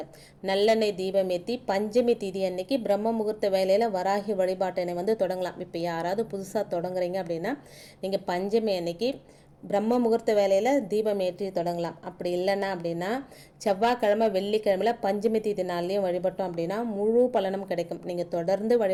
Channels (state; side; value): identical; both; correlation 1.00